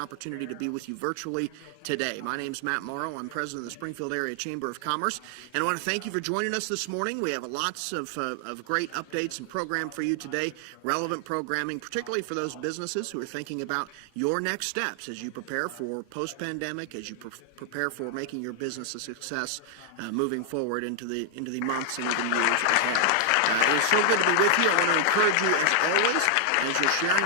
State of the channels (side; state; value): both; different; correlation 0.00